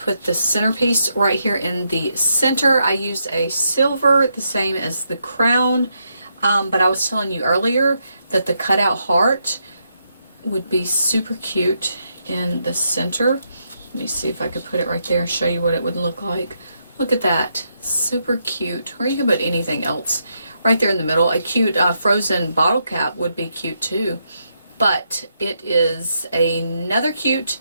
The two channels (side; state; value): both; inverted; correlation -0.80